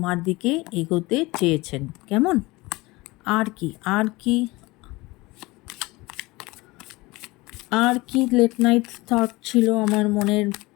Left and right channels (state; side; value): quieter; right; 22.0 dB